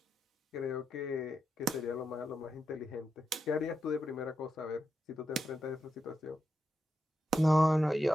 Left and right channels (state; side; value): normal; both; correlation 0.86